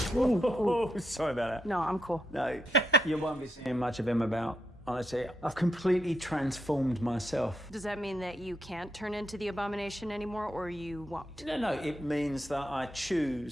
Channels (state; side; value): normal; both; correlation 0.81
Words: Oh, sorry about that. No, I'm cool. No, you won't be seeing much of him about. Honestly, I've completely transformed myself. Does that mean that you can't turn into the abomination anymore, or you won't? No, it means that I